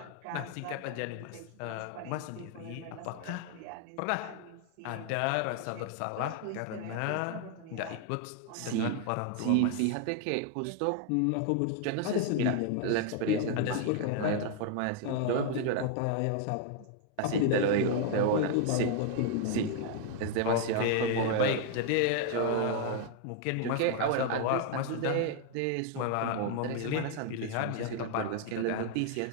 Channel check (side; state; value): both; different; correlation 0.00